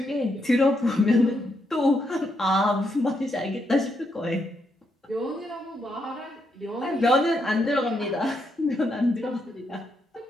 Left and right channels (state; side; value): normal; both; correlation 0.79